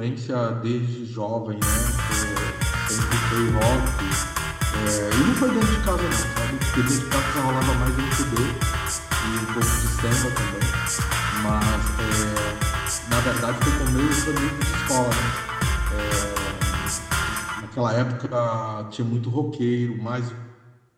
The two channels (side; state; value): both; identical; correlation 1.00